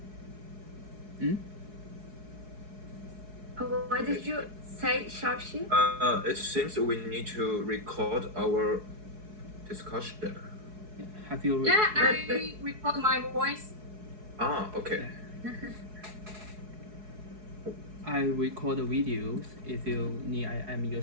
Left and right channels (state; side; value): late; left; 4.7 ms